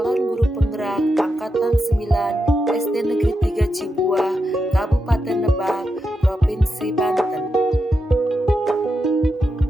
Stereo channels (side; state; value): both; normal; correlation 0.86